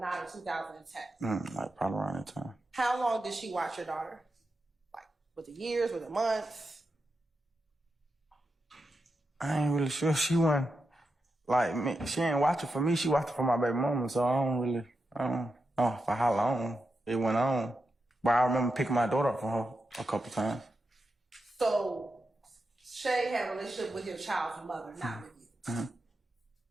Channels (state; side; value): normal; both; correlation 0.88